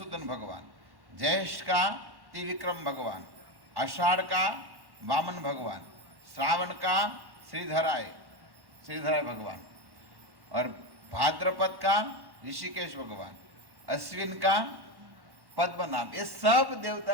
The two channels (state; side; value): late; left; 1.1 ms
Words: भगवान, ज्येष्ठ का त्रिविक्रम भगवान, आषाढ़ का वामन भगवान, श्रावण का श्रीधराय भगवान, और भाद्रपद का ऋषिकेश भगवान, अश्विन का पद्मनाभ। ये सब